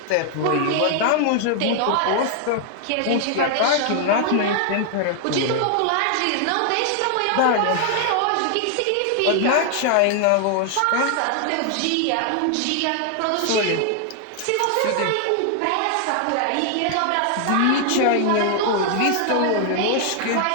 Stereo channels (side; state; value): both; different; correlation 0.00